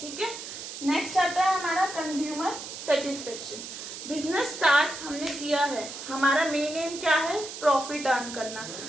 ठीक है। नेक्स्ट आता है हमारा कंज्यूमर सेटिस्फेक्शन। बिजनेस स्टार्ट हमने किया है, हमारा मेन एम क्या है, प्रॉफिट अर्न करना।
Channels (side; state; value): right; noise; hiss, 10 dB below the sound